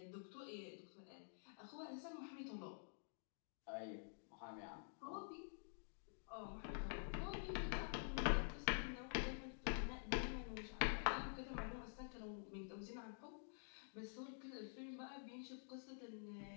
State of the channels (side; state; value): right; silent; digital silence